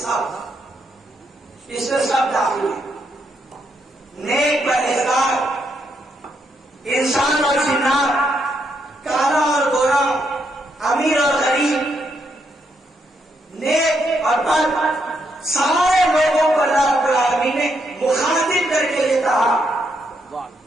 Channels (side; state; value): both; normal; correlation 0.78